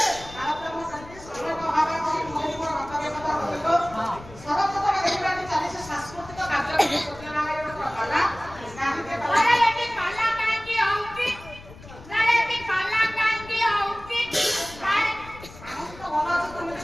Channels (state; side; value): noise; left; rumble, 18 dB below the sound